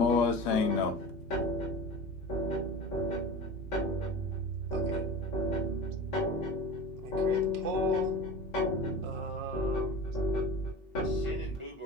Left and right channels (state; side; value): normal; both; correlation 0.33